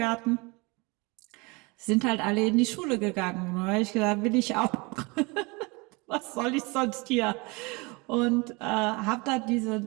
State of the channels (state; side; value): quieter; left; 27.2 dB